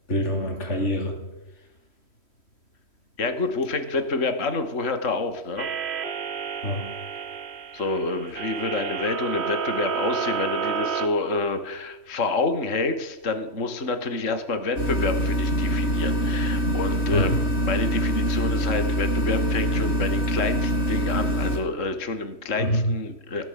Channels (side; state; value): right; late; 3.1 ms